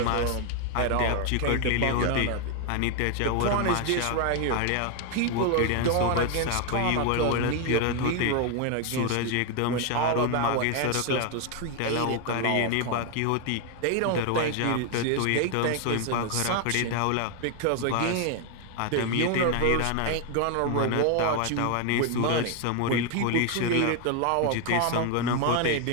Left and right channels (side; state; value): both; different; correlation 0.01